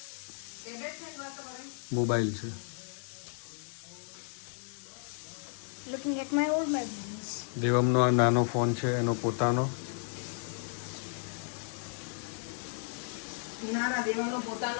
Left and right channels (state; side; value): silent; right; digital silence